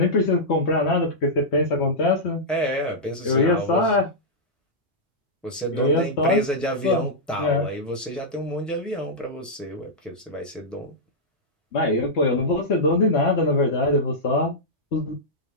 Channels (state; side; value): normal; both; correlation -0.09